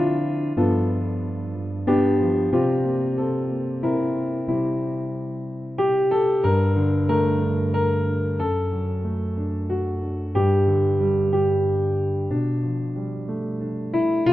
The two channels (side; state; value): both; normal; correlation 0.94